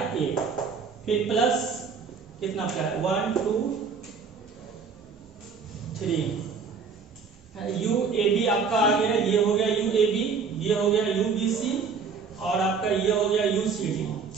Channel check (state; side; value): quieter; left; 5.5 dB